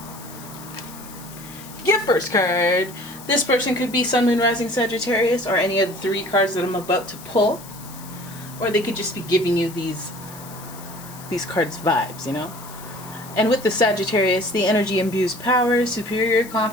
Get first card. This person could be Sun, Moon, Rising, Sagittarius, or any of the three cards that I'm about to pull. Or they could just be giving you these cards vibes, you know? And with the Sagittarius, the energy imbues power, superior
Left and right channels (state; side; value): noise; left; hiss, 17 dB below the sound